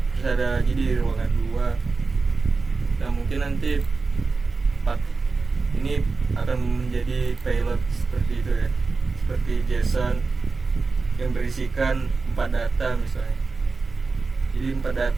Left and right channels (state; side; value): quieter; left; 4.1 dB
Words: terus ada lagi di ruangan 2. Nah mungkin nanti ini akan menjadi payload seperti itu ya, seperti JSON yang berisikan 4 data misalnya. Jadi 4